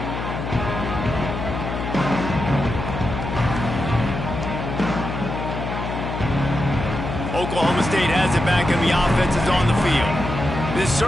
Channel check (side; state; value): left; noise; hum, 5 dB below the sound